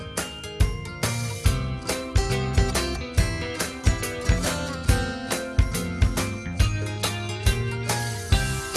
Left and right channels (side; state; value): both; identical; correlation 1.00